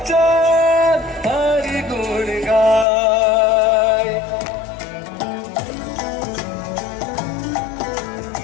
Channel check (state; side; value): drops out; right; at 2.9 s